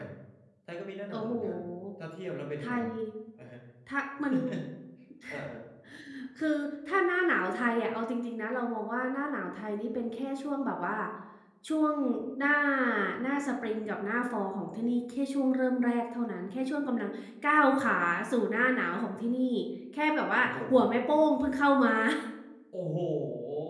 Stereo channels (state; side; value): identical; both; correlation 1.00